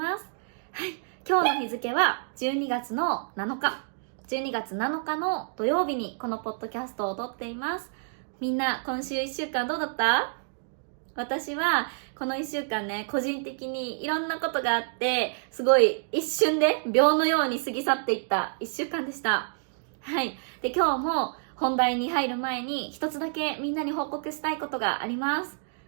す。はい、今日の日付は12月の7日。12月7日の土曜日にこのポッドキャストを撮っています。みんな今週1週間どうだった？私はこの1週間ね、個人的にいろんなことがあって、すごい一瞬で秒のように過ぎ去っていった1週間でした。はい。で、今日も本題に入る前に一つだけみんなに報告したいことがあります。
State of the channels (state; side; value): silent; left; digital silence